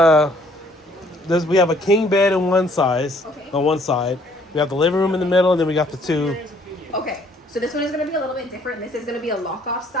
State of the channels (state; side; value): normal; both; correlation 0.62